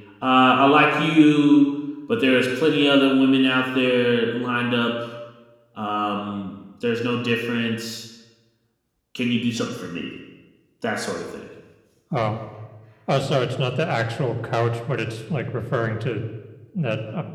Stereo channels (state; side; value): identical; both; correlation 1.00